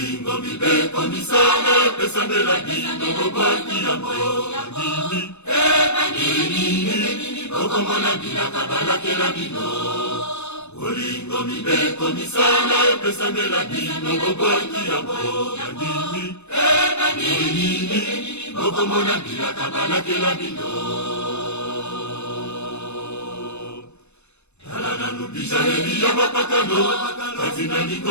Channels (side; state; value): right; late; 0.81 ms